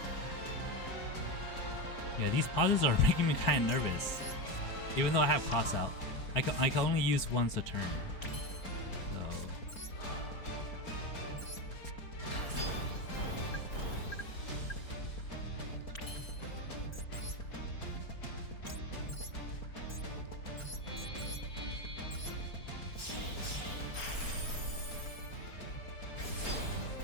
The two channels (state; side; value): late; right; 4.4 ms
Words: Yeah, these pauses are making me kind of nervous. Even though I have cross out, I can only use once a turn.